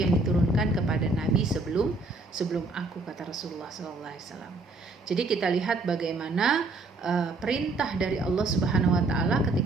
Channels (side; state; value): left; quieter; 3.4 dB